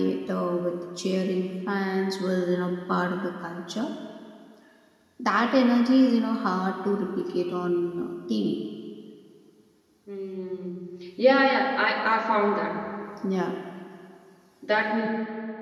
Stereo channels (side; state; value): both; identical; correlation 1.00